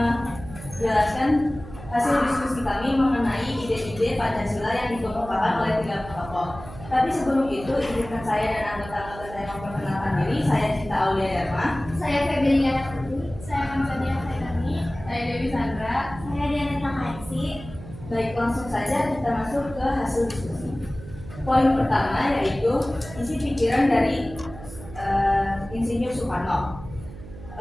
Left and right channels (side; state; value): right; noise; hum, 15 dB below the sound